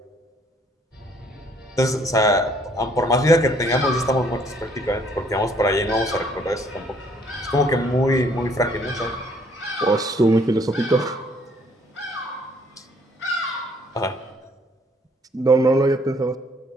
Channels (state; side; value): normal; both; correlation 0.63